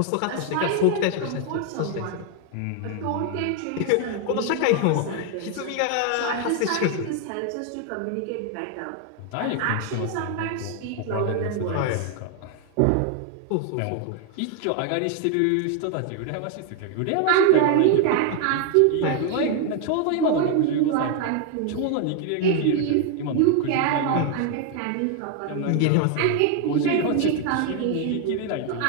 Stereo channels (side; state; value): both; different; correlation 0.00